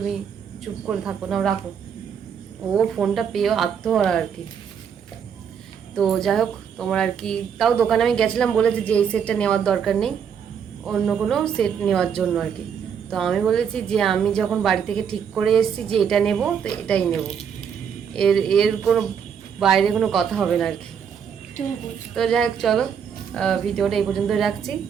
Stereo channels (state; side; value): quieter; left; 7.5 dB